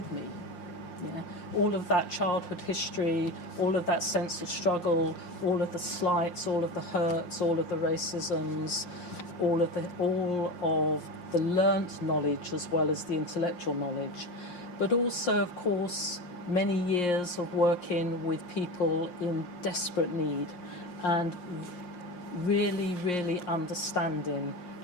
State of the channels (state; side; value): late; right; 5.6 ms